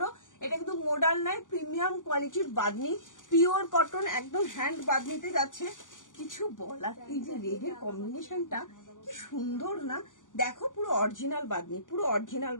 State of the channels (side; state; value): right; late; 0.88 ms